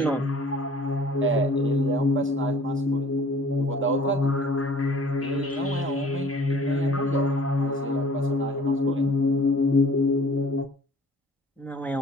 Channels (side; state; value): both; normal; correlation 0.50